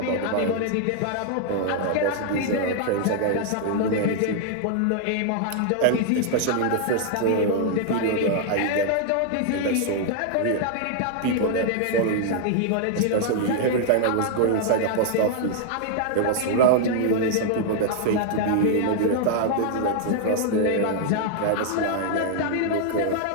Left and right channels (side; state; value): both; different; correlation 0.00